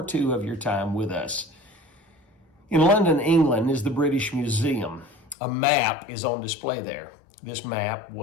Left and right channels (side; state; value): right; drops out; at 5.4 s